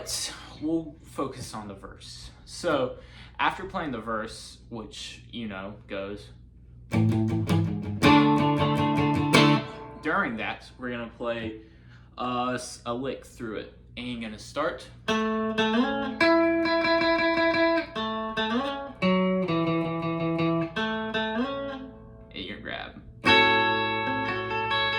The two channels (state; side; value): identical; both; correlation 1.00